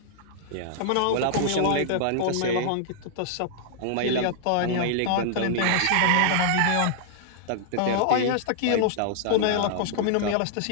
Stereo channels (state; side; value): different; both; correlation -0.01